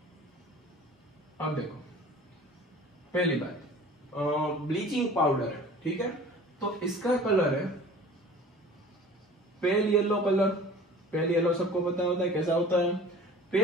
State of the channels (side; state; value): both; normal; correlation 0.45